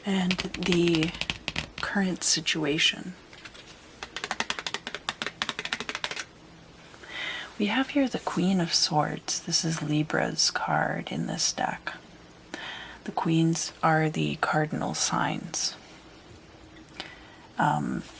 And the current situation. We have here the Queen of Swords. This is Libra's card in this deck. The queens are the cardinal signs.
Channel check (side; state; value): both; identical; correlation 1.00